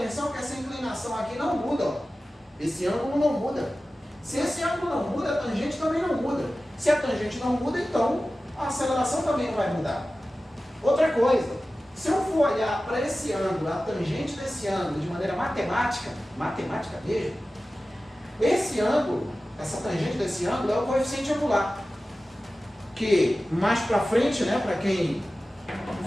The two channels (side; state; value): both; normal; correlation 0.95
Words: que essa inclinação aqui não muda, ó. Esse ângulo não muda. Se esse ângulo não muda, a tangente também não muda. Se a tangente não muda, então a aceleração também não vai mudar. Outra coisa, se eu for olhar para esse ângulo, a tangente desse ângulo, de maneira matemática mesmo, esse ângulo, essa tangente desse ângulo é o coeficiente angular. Que mais para frente, né, para quem